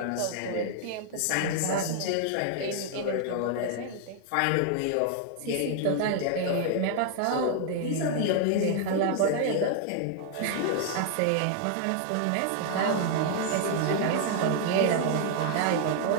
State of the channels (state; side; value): different; both; correlation 0.00